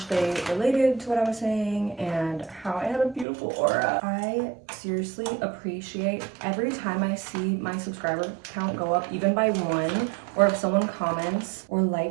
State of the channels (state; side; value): drops out; left; at 3.2 s